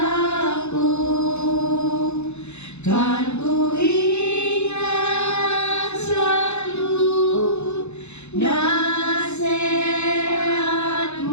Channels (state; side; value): late; right; 0.81 ms